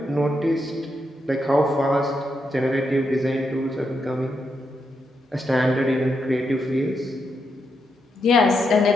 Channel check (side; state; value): both; normal; correlation 0.82